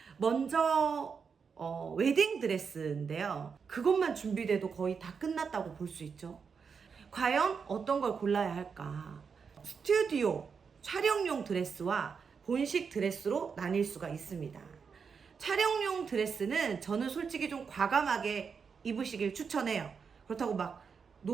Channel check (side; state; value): left; quieter; 5.9 dB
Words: 먼저 웨딩 드레스인데요. 그것만 준비돼도 거의 다 끝났다고 볼 수 있죠. 과연 어떤 걸 골라야 할까? 스튜디오 촬영용 드레스와 본식 드레스로 나뉠 수가 있습니다. 촬영용 드레스는 저는 솔직히 좀 과감하게 입으시길 추천해요. 그렇다고 막